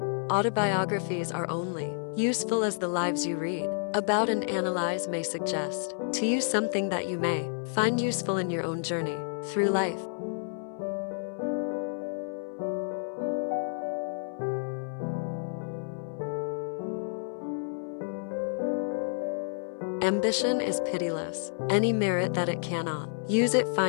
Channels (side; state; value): right; silent; 58 dB below the other